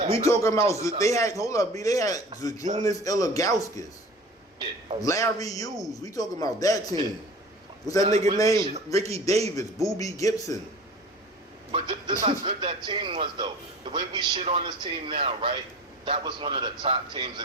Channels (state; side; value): normal; both; correlation 0.40